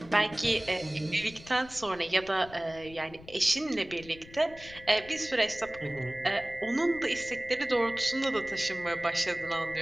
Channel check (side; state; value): left; noise; rumble, 19 dB below the sound